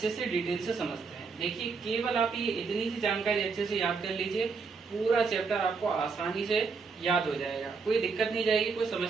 से डिटेल से समझते हैं। देखिए, केवल आप ये इतनी सी जानकारी अच्छे से याद कर लीजिए, पूरा चैप्टर आपको आसानी से याद हो जाएगा, कोई दिक्कत नहीं जाएगी, कोई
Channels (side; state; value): left; quieter; 4.8 dB